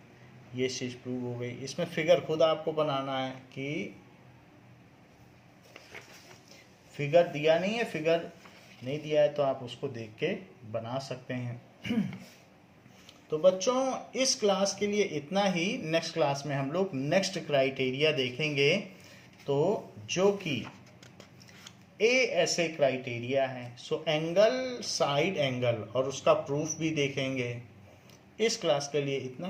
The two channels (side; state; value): both; identical; correlation 1.00